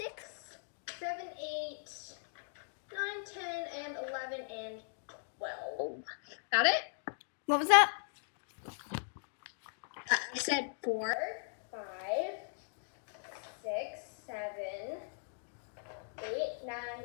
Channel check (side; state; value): right; silent; digital silence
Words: 7, 8, 9, 10, and 11, and 12. Got it? What was that? I said 4, 5, 6, 7, 8, 9,